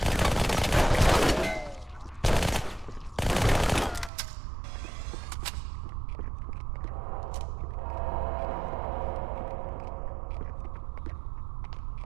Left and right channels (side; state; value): left; drops out; at 4.1 s